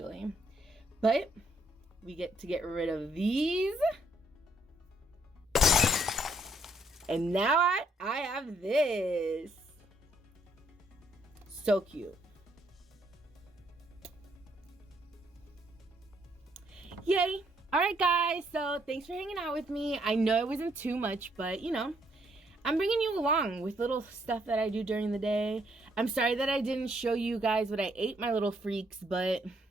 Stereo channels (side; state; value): both; normal; correlation 0.70